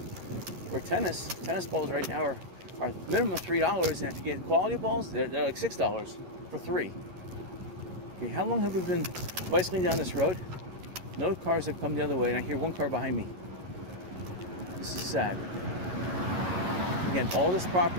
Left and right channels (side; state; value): left; late; 11 ms